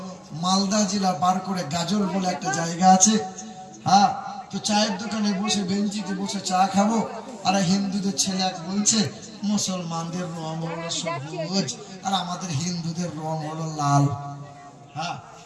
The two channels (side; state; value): both; identical; correlation 1.00